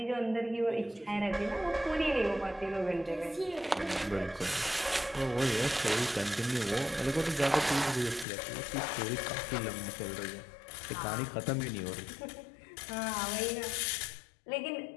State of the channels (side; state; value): right; drops out; at 8.2 s